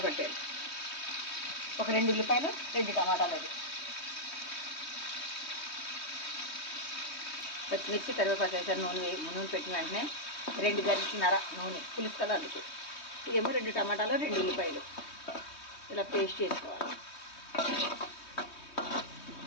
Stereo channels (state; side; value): late; right; 3.2 ms